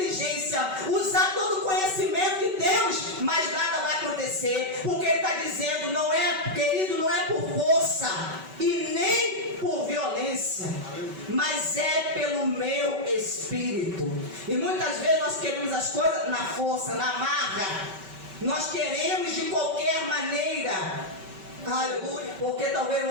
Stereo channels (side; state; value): left; late; 5.2 ms